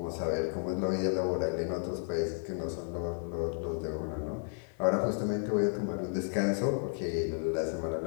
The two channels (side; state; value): right; silent; 56 dB below the other